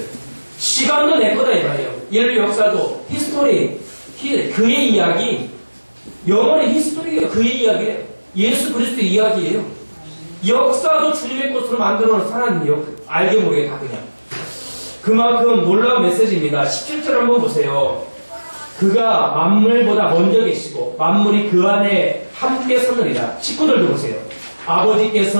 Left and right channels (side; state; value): both; inverted; correlation -1.00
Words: 시간도 내 거다 이 말이에요. 인류 역사도, 히스토리, 그의 이야기, 영원의 히스토리가 그의 이야기예요. 예수 그리스도의 이야기예요. 역사도 주님의 것으로 만들어놓은 하나님이요. 알게 모르게 다 그냥. 그만큼 놀라운 메시지입니다. 17절 한번 보세요. 그가 만물보다 먼저 계시고 만물이 그 안에 함께 서느니라. 19절도 보세요.